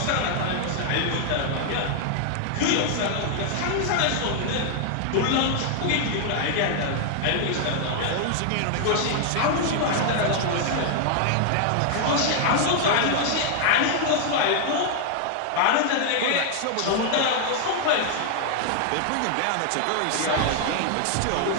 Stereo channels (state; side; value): different; both; correlation 0.00